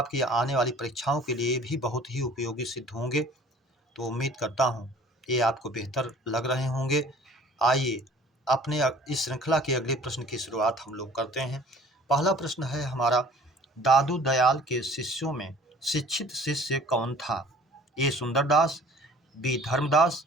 आने वाली परीक्षाओं के लिए भी बहुत ही उपयोगी सिद्ध होंगे। तो उम्मीद करता हूँ ये आपको बेहतर लग रहे होंगे। आइए अपने इस श्रृंखला के अगले प्रश्न की शुरुआत हम लोग करते हैं। पहला प्रश्न है हमारा, दादू दयाल के शिष्यों में शिक्षित शिष्य कौन था? ए सुंदरदास, बी धर्मदास,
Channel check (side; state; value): both; normal; correlation 0.51